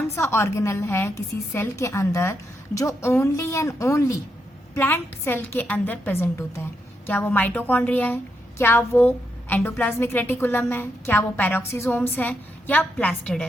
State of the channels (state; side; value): normal; both; correlation 0.81